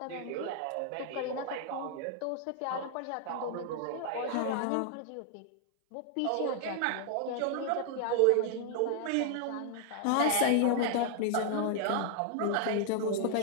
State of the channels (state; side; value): different; both; correlation 0.00